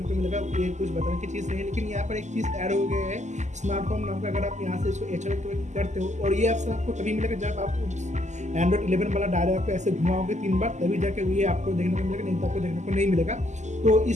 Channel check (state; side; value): late; left; 0.34 ms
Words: को मिलेगा। ये कुछ बताने की चीज़ नहीं है, लेकिन यहाँ पर एक चीज़ ऐड हो गया है, स्मार्ट होम नाम का। अगर आप यहाँ से इसको एक्टिवेट करते हो, और ये ऑप्शन आपको तभी मिलेगा जब आप Android 11 वाला डायल आपको ऐसे घुमाओगे 3 बार, तभी जाके ये आपको देखने को मिलेगा, नहीं तो आपको देखने को नहीं मिलेगा। तो